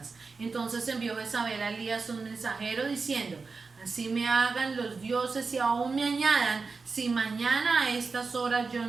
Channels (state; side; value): quieter; left; 4.4 dB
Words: Entonces envió Jezabel a Elías un mensajero diciendo, así me hagan los dioses y aún me añadan, si mañana a estas horas yo